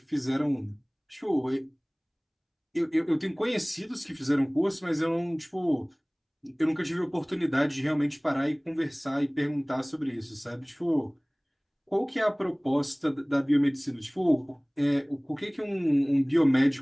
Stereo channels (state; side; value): identical; both; correlation 1.00